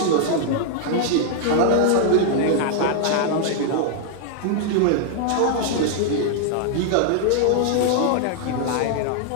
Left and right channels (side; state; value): both; different; correlation 0.00